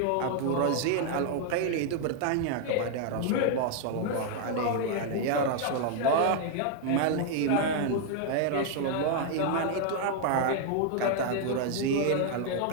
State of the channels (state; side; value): different; both; correlation 0.00